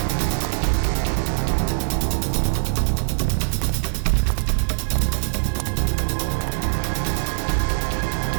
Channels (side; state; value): left; silent; digital silence